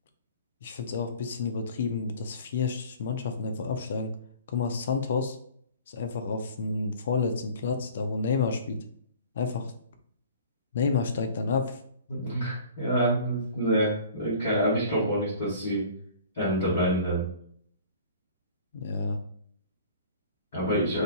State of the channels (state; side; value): inverted; both; correlation -0.46